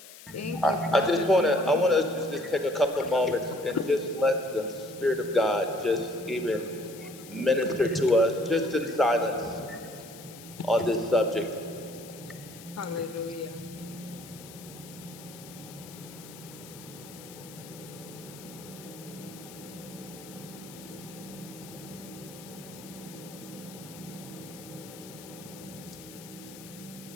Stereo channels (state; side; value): noise; left; hiss, 17 dB below the sound